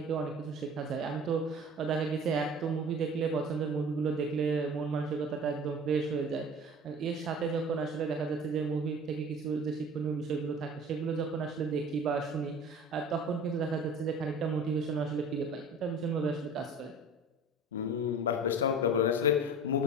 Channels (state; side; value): normal; both; correlation 0.40